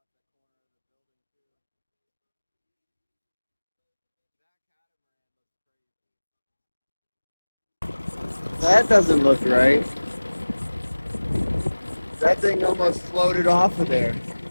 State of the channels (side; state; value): both; inverted; correlation -1.00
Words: That doesn't look right. That thing almost floated off of there.